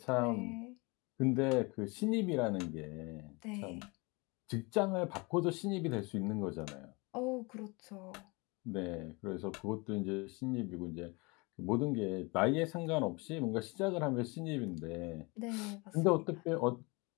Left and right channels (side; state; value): right; quieter; 27.3 dB